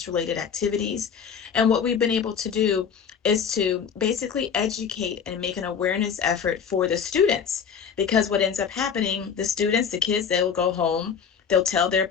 related activities. And what we've been able to do is to basically educate and make an awareness effort for the students, because what ends up happening, the kids, they will go home, they'll tell their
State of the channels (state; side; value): quieter; right; 7.0 dB